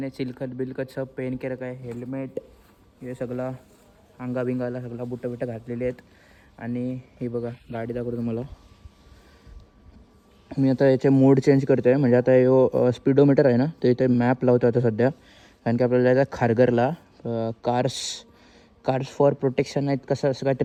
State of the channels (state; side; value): identical; both; correlation 1.00